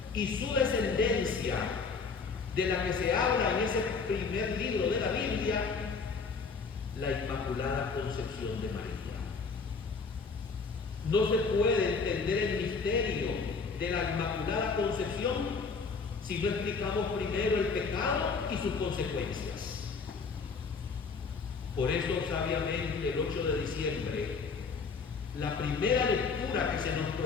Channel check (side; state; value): right; quieter; 4.9 dB